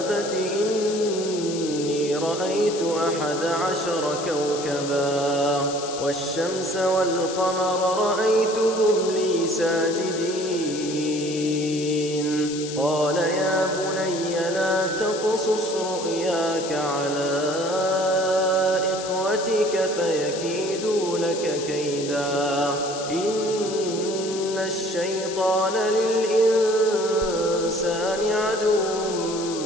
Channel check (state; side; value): noise; left; hiss, 10 dB below the sound